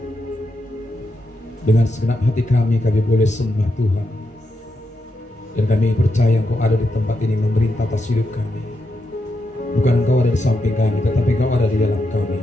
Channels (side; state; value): both; normal; correlation 0.84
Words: Dengan segenap hati kami boleh sembah Tuhan. Dan kami percaya Engkau ada di tempat ini memerintah atas hidup kami. Bukan Engkau ada di samping kami, tetapi Engkau ada di dalam kami,